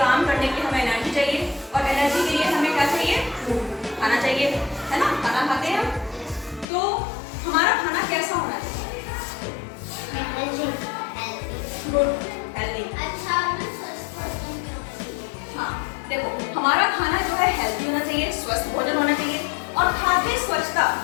करने के लिए हमें एनर्जी चाहिए, और एनर्जी के लिए हमें क्या चाहिए? खाना चाहिए, है ना। खाना खाते हैं हम, तो हमारा खाना कैसा होना चाहिए? Good, healthy. हाँ देखो, हमारा खाना जो है हेल्दी होना चाहिए, स्वस्थ भोजन होना चाहिए, और खाद्य स्वच्छता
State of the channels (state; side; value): drops out; right; at 6.7 s